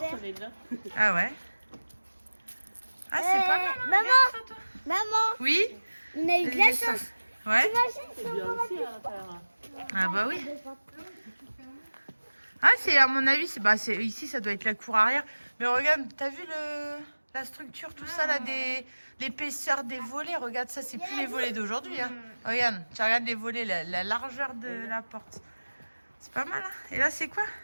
on est là. Ah ouais? Ah, c'est pas mal. hein, maman. regarde ça, toi. Maman, Oui? on a eu de la chance. Ouais? C'est bien aussi à l'intérieur. Ah bah oui. Ah, c'est à mon avis, ici, ça doit être la cour arrière. Mais regarde, t'as vu la structure, tout ça, là, l'épaisseur des volets. Regarde ça, c'est plus les volets d'aujourd'hui. Hein. Regarde, tu regardes les volets, la largeur de la porte. C'est pas mal, hein. Et là, c'est quoi?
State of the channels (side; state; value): both; inverted; correlation -1.00